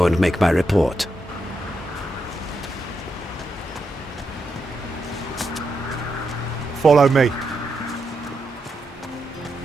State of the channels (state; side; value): normal; both; correlation 0.84